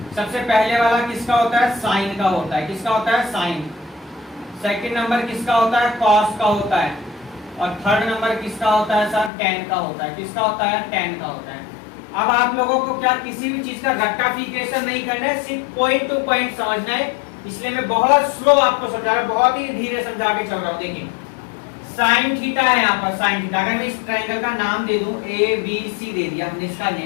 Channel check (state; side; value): drops out; right; at 9.3 s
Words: सबसे पहले वाला किसका होता है? साइन का होता है। किसका होता है? साइन। सेकंड नंबर किसका होता है? कॉस का होता है। और थर्ड नंबर किसका होता है सर? टेन का होता है। किसका होता है? टेन का होता है। अब आप लोगों को क्या किसी भी चीज का रट्टाफिकेशन नहीं करना है, सिर्फ पॉइंट टू पॉइंट समझना है। इसलिए मैं बहुत स्लो आपको समझा रहा हूं, बहुत ही धीरे समझा के चल रहा हूं। देखिए साइन थीटा है यहाँ पर, साइन थीटा। अगर मैं इस ट्राइंगल का नाम दे दूं ABC दे दिया, हमने इसका